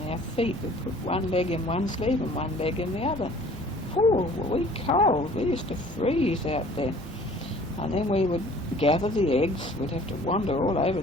our feet. We'd put one leg in one sleeve and one leg in the other. Oh, were we cold? We used to freeze out there. And then we would gather the eggs. We'd have to wander all over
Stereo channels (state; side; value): normal; both; correlation 0.51